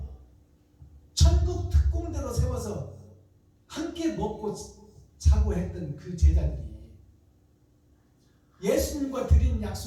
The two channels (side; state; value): both; identical; correlation 1.00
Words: 천국 특공대로 세워서 함께 먹고 자고 했던 그 제자들이 예수님과 드린